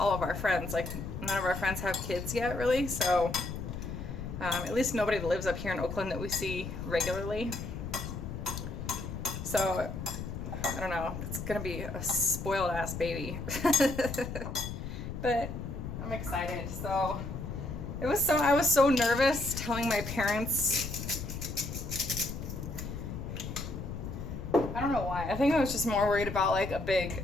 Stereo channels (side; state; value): left; noise; rumble, 6 dB below the sound